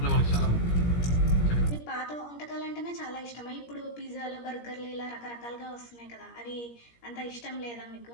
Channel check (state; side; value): late; right; 17 ms